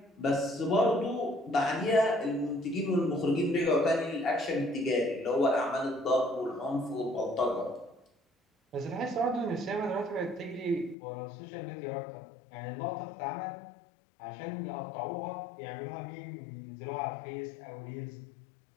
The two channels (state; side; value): drops out; right; at 11.0 s